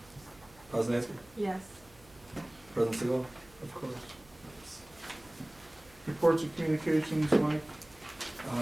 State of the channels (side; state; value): right; noise; hum, 25 dB below the sound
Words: Poznanski? Yes. President Sigel? Of course. Reports of communications, Mike.